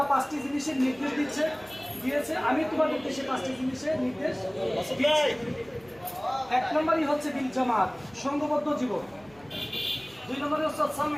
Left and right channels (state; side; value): noise; right; hum, 26 dB below the sound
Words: 5টি জিনিসের নির্দেশ দিয়েছে, আমি তোমাদেরকে সেই 5টি জিনিসের নির্দেশ দিয়েছি। 1 নম্বরই হচ্ছে বিল জামাত, সংঘবদ্ধ জীবন। 2 নম্বরে হচ্ছে